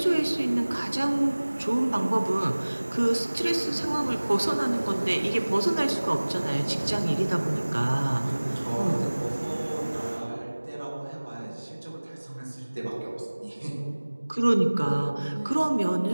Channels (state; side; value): inverted; both; correlation -1.00